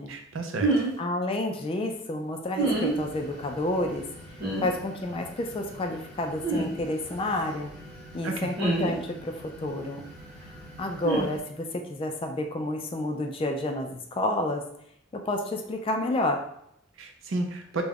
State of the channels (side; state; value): both; normal; correlation 0.39